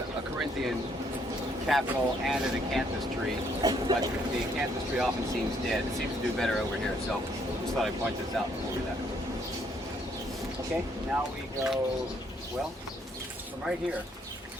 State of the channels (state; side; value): normal; both; correlation 0.69